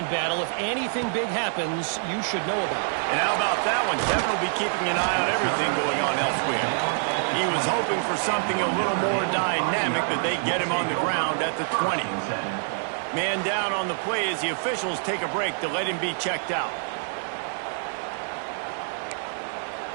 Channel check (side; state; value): left; silent; 61 dB below the other